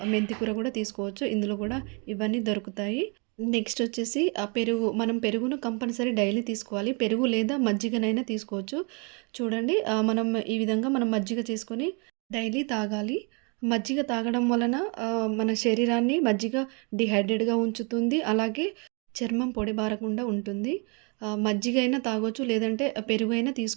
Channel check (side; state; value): left; quieter; 33.5 dB